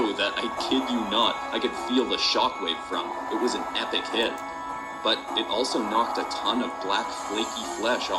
that, I kid you not, I could feel the shockwave from. It was an epic hit. But it also knocked a ton of black flaky flesh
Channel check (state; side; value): identical; both; correlation 1.00